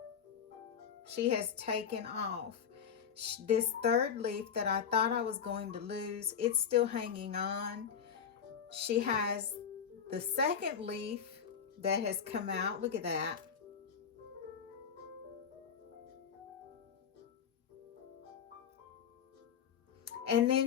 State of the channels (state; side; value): quieter; right; 7.4 dB